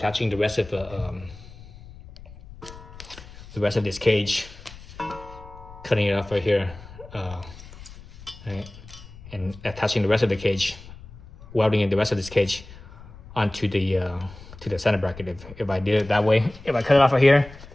the rest of this cage, cutting it off right here, right, and attaching the rest of the cage, welding in the rest of this cage onto the center bracket. If I did it that way, if I cut it off right here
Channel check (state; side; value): noise; left; rumble, 18 dB below the sound